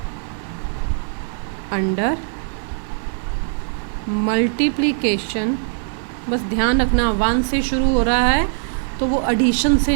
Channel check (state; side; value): silent; left; digital silence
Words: under multiplication। बस ध्यान रखना 1 से शुरू हो रहा है तो वो एडिशन से